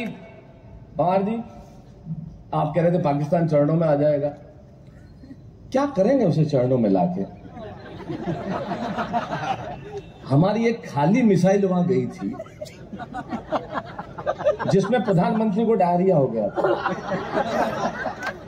पवार जी, आप कह रहे थे पाकिस्तान चरणों में आ जाएगा, क्या करेंगे उसे चरणों में लाके? हमारी एक खाली मिसाइल वहां गई थी जिसमें प्रधानमंत्री को डायरिया हो गया था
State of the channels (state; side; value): identical; both; correlation 1.00